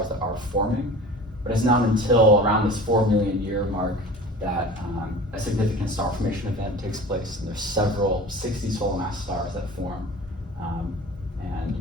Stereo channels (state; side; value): normal; both; correlation 0.39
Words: that are forming, but it's not until around this 4 million year mark that a significant star formation event takes place, and there's several 60 solar mass stars that form and